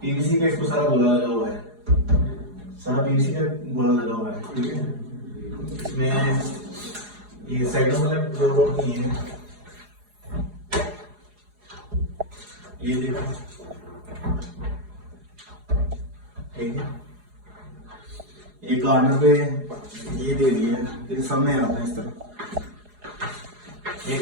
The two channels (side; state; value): left; late; 4.8 ms